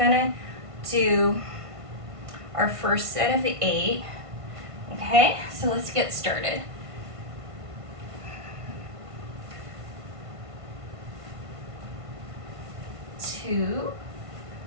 to do our first set of 8. Okay, so let's get started. 2,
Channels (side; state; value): left; late; 1.5 ms